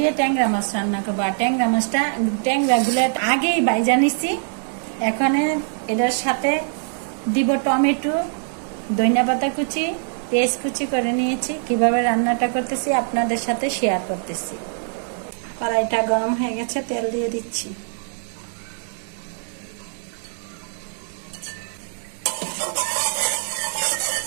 ট্যাংরা মাছ রান্না করবো। আর ট্যাংরাগুলো আগেই বাইজা নিচ্ছি। এখানে এটার সাথে দিব টমেটো, ধনিয়া পাতা কুচি, পেঁয়াজ কুচি করে নিয়েছি। কিভাবে রান্নাটা করতেছি আপনাদের সাথে শেয়ার করতেছি। কড়াইটা গরম হয়ে গেছে, তেল দিয়ে দিচ্ছি।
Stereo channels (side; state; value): left; silent; 64 dB below the other